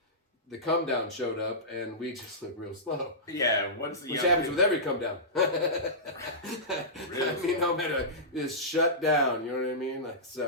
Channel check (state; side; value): normal; both; correlation -0.17